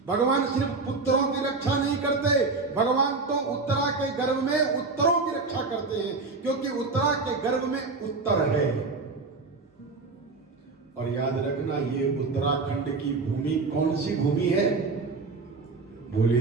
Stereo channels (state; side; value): quieter; left; 3.9 dB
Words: भगवान सिर्फ पुत्रों की रक्षा नहीं करते, भगवान तो उत्तरा के गर्भ में उत्तरों की रक्षा करते हैं, क्योंकि उत्तरा के गर्भ में उत्तर है। और याद रखना, ये उत्तराखंड की भूमि कौन सी भूमि है?